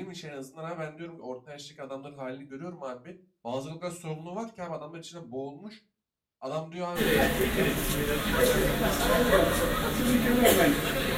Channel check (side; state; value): both; identical; correlation 1.00